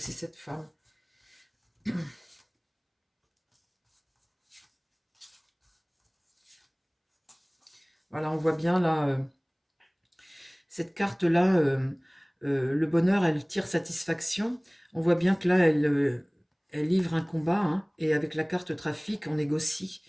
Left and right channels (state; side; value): identical; both; correlation 1.00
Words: cette femme. Voilà, on voit bien là, cette carte-là, le bonheur, elle tire satisfaction. On voit bien que là, elle livre un combat, hein, et avec la carte trafic, on négocie.